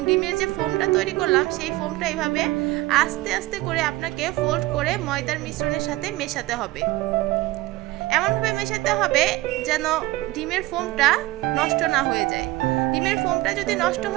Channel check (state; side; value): quieter; left; 18.8 dB